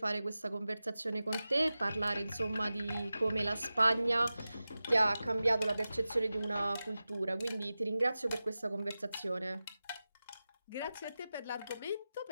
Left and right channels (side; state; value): both; inverted; correlation -0.95